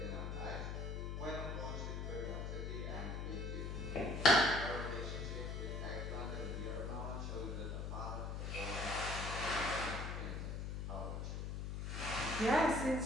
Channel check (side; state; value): left; noise; hum, 3 dB below the sound